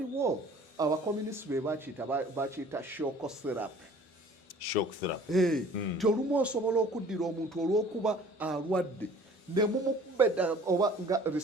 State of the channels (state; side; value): normal; both; correlation 0.50